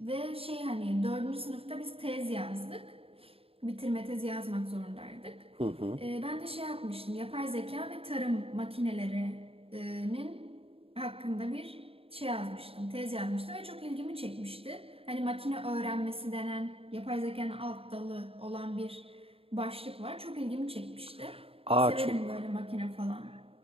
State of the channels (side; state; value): left; late; 0.27 ms